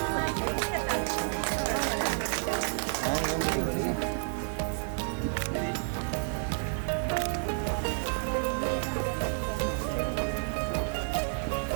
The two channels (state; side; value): silent; left; 58 dB below the other